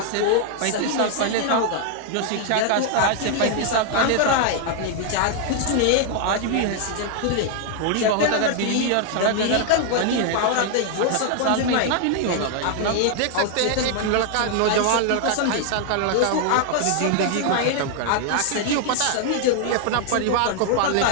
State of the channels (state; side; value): different; both; correlation 0.00